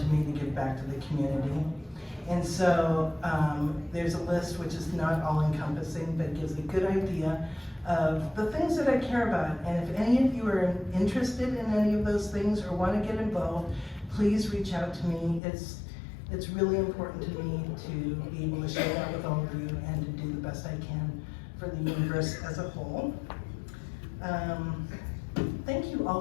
me to give back to the community. And so there's a list which is not all encompassing, but gives a good idea of the things that I care about. And if any of you are interested in any of those things or want to get involved, please reach out to me. It's really important to me to be able to share that with all of you and to do the best I can for the universe as a whole. Thank you all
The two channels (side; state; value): right; drops out; at 15.4 s